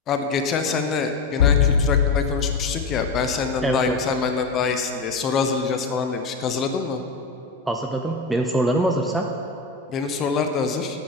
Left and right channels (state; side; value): quieter; right; 3.9 dB